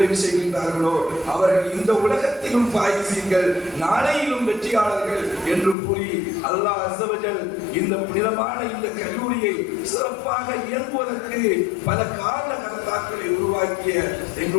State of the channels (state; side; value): drops out; right; at 5.8 s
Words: செய்கின்றார்களோ அவர்கள் இந்த உலகத்திலும் பாயிசீன்கள், நாளையிலும் வெற்றியாளர்கள் என்று கூறி அல்லாஹ் அஸ்ஸ வ ஜல் இந்த புனிதமான இந்த கல்லூரியை சிறப்பாக இயங்குவதற்கு பல காரண கர்த்தாக்களை உருவாக்கிய